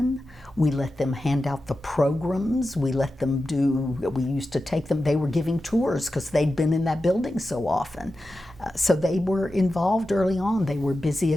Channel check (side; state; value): both; normal; correlation 0.92